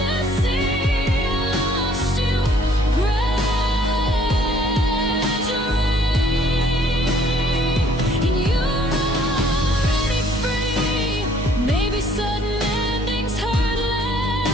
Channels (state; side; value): normal; both; correlation 0.60